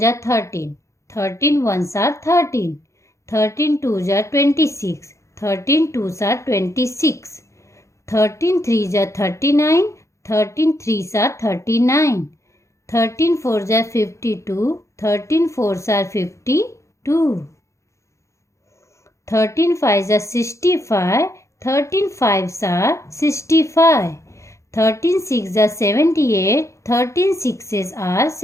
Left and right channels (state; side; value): late; right; 0.14 ms